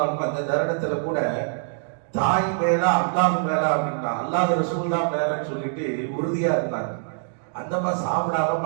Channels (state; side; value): silent; left; digital silence